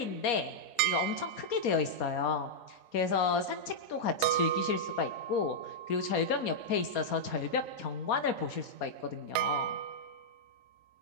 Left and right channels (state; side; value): late; right; 4.2 ms